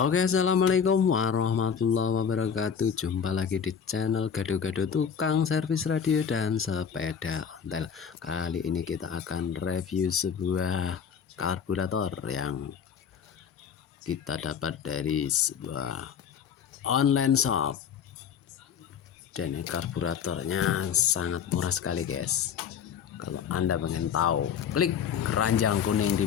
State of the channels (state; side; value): quieter; right; 7.4 dB